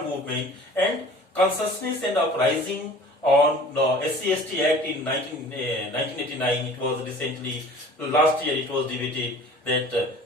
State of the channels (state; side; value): normal; both; correlation 0.46